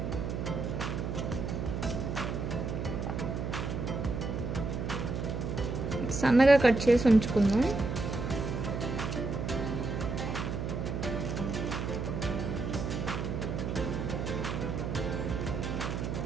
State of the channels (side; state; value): right; noise; hum, 3 dB below the sound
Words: సన్నగా కట్ చేసి ఉంచుకుందాం.